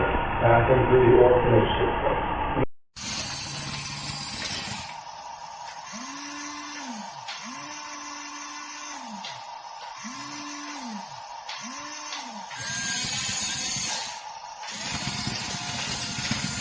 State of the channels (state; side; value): identical; both; correlation 1.00